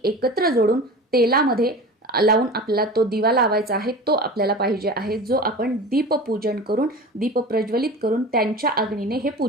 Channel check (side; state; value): both; normal; correlation 0.34